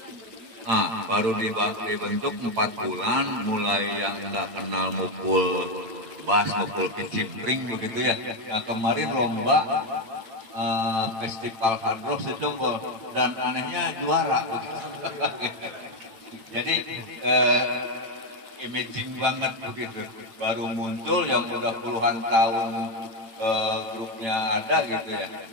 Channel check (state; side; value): late; left; 8.9 ms